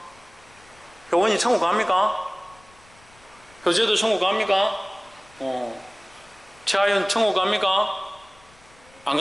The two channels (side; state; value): left; noise; rumble, 28 dB below the sound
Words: 효원이 천국 갑니까? 효재도 천국 갑니까? 최하윤 천국 갑니까? 안